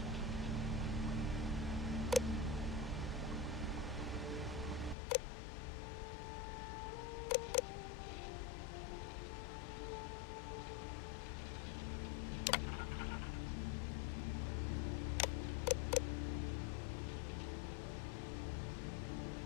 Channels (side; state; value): right; drops out; at 5.0 s